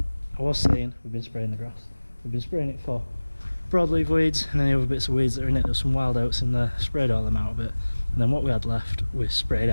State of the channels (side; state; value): both; inverted; correlation -1.00